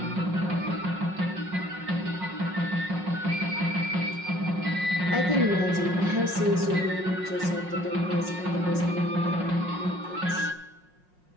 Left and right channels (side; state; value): left; late; 5.5 ms